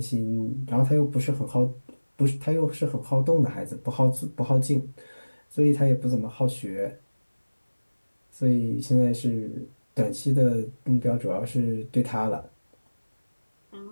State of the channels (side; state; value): both; inverted; correlation -1.00